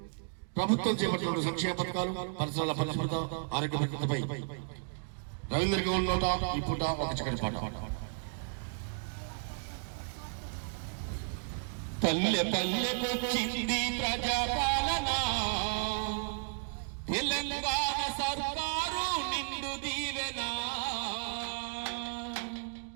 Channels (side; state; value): left; silent; digital silence